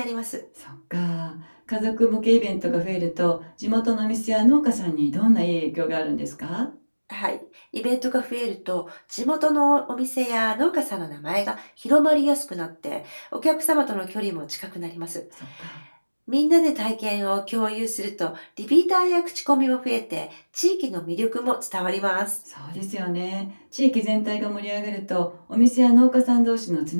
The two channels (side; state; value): both; inverted; correlation -1.00